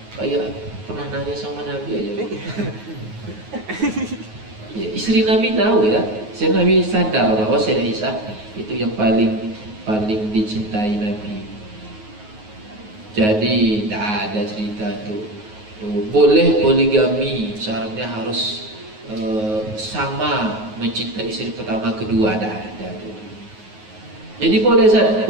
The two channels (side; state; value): left; late; 9.4 ms